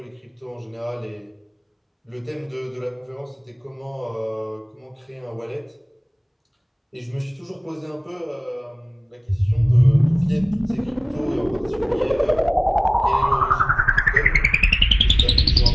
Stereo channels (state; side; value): identical; both; correlation 1.00